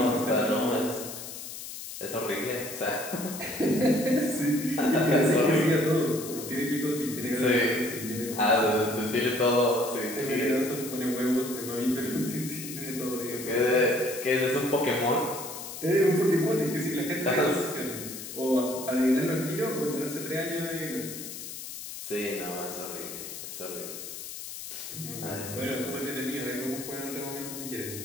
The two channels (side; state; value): left; noise; hiss, 10 dB below the sound